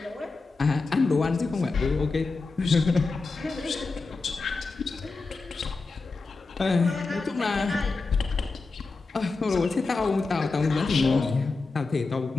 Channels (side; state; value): right; quieter; 3.9 dB